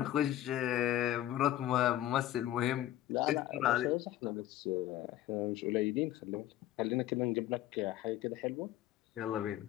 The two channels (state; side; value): quieter; right; 13.5 dB